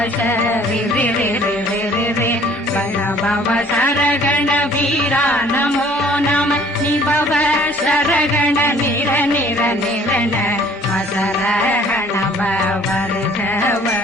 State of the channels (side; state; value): both; normal; correlation 0.55